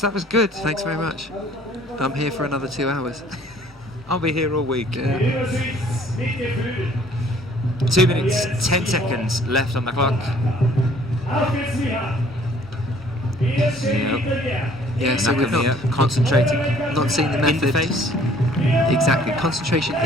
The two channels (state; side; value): normal; both; correlation 0.57